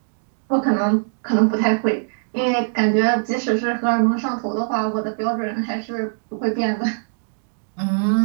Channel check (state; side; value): silent; left; digital silence